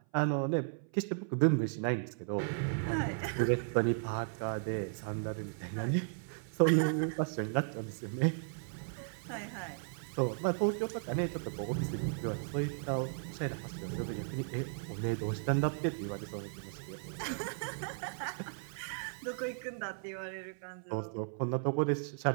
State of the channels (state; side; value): silent; left; 54 dB below the other